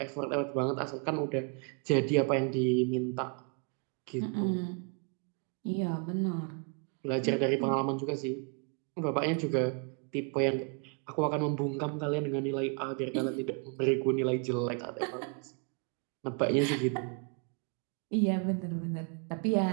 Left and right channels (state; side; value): quieter; left; 38.6 dB